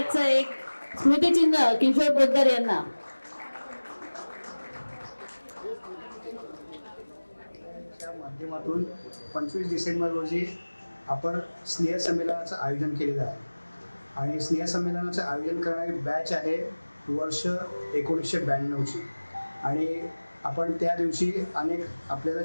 एक स्मृतिचिन्ह किशोर पोद्दार यांना. च्या माध्यमातून 25 डिसेंबर रोजी आपण स्नेहसंमेलनाचं आयोजन केलेलं आहे आणि स्नेहसंमेलनाचं आयोजन करणारी बॅच आहे वर्ष 1992ची आणि आपण त्या दिवशी अनेक आपल्याला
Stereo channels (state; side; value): inverted; both; correlation -1.00